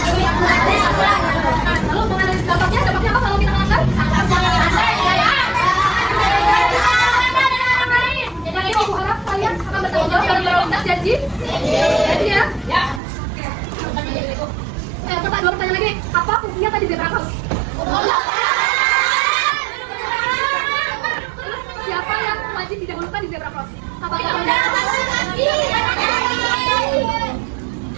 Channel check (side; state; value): left; drops out; at 13.0 s